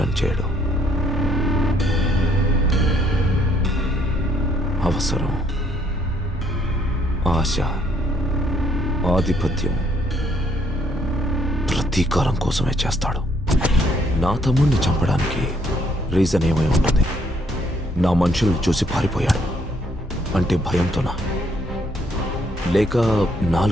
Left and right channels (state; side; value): normal; both; correlation 0.68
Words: చేయడం. అవసరం, ఆశ, ఆధిపత్యం, ప్రతీకారం కోసమే చేస్తాడు. నా తమ్ముడిని చంపడానికి రీజన్ ఏమై ఉంటుంది? నా మనుషుల్ని చూసి పారిపోయాడు అంటే భయంతోనా? లేక